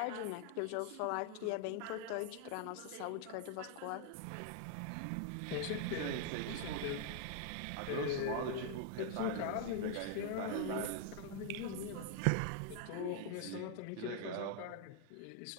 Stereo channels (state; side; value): different; both; correlation 0.00